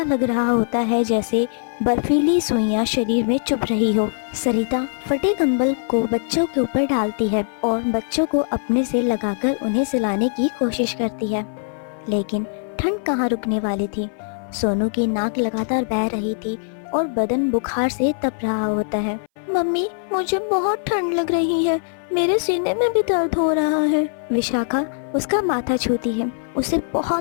लग रहा होता है जैसे बर्फीली सुइयां शरीर में चुभ रही हो। सरिता फटे कंबल को बच्चों के ऊपर डालती है और बच्चों को अपने से लगाकर उन्हें सुलाने की कोशिश करती है, लेकिन ठंड कहाँ रुकने वाली थी। सोनू की नाक लगातार बह रही थी और बदन बुखार से तप रहा होता है। मम्मी, मुझे बहुत ठंड लग रही है, मेरे सीने में भी दर्द हो रहा है। विशाखा उसका माथा छूती है। उसे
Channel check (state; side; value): silent; right; 60 dB below the other